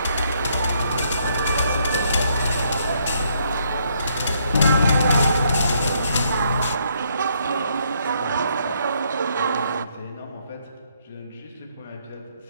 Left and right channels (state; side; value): inverted; both; correlation -0.71